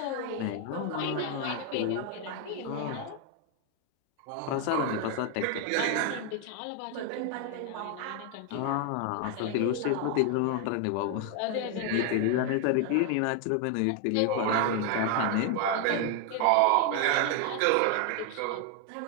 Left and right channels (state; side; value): different; both; correlation 0.01